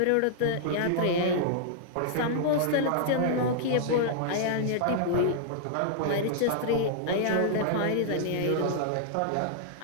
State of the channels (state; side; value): different; both; correlation -0.01